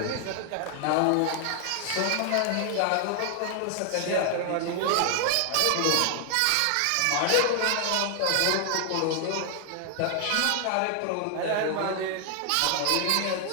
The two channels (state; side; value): different; both; correlation 0.00